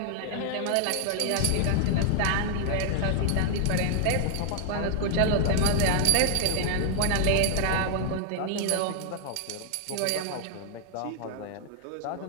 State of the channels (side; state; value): both; different; correlation -0.01